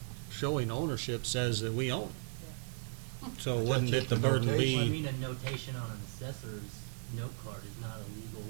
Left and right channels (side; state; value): left; silent; digital silence